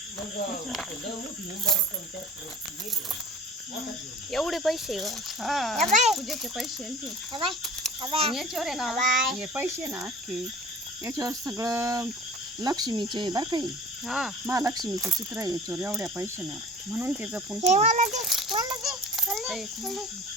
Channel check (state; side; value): normal; both; correlation 0.42